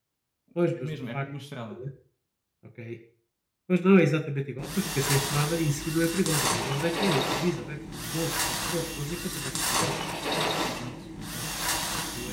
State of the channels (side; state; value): both; identical; correlation 1.00